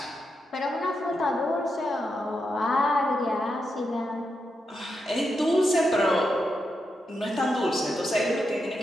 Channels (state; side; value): normal; both; correlation 0.85